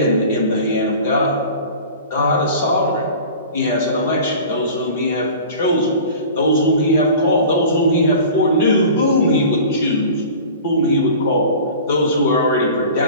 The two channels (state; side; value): inverted; both; correlation -0.40